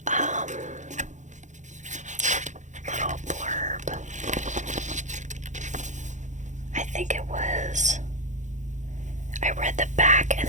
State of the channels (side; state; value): left; late; 0.35 ms